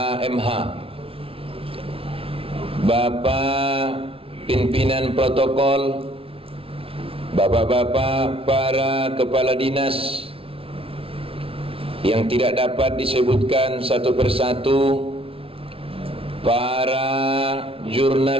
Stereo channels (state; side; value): late; left; 0.26 ms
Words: Bapak pimpinan protokol, bapak-bapak para kepala dinas yang tidak dapat disebutkan satu persatu, para